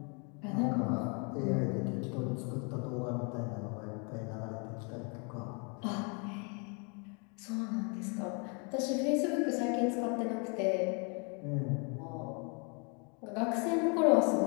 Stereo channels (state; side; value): quieter; right; 35.5 dB